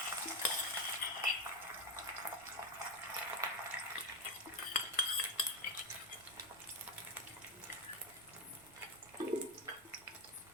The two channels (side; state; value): right; noise; rumble, 26 dB below the sound